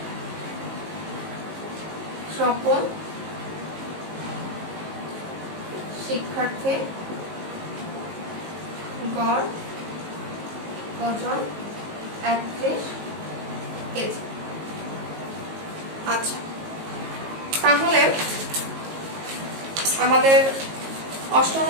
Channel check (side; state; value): left; late; 19 ms